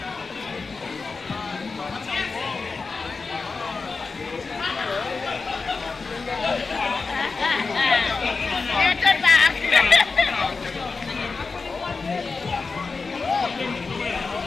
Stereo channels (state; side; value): quieter; right; 4.4 dB